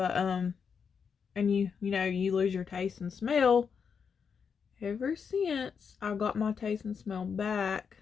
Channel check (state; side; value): quieter; right; 6.4 dB